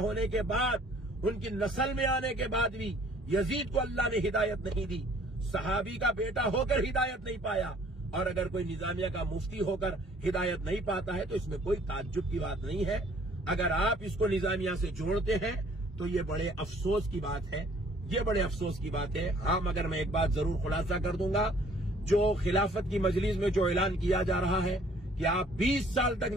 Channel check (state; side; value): normal; both; correlation 0.58